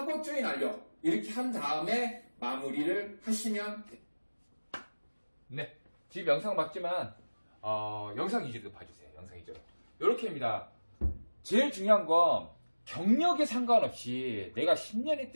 조인 완료 이렇게 한 다음에 마무리를 하시면 됩니다. 네, 지금 영상 맞지만 영상 위주로 봐주세요. 영상 위주로 이렇게입니다. 제일 중요한 건 경력에 상관없이 내가 10년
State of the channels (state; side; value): inverted; both; correlation -1.00